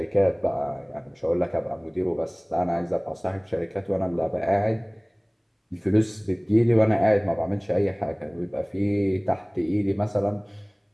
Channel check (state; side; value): identical; both; correlation 1.00